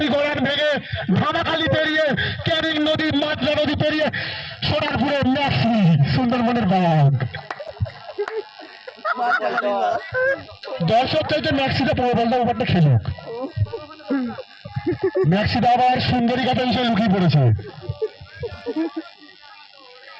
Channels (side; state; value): both; identical; correlation 1.00